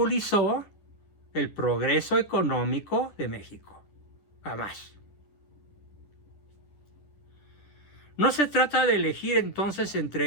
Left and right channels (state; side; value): late; right; 10 ms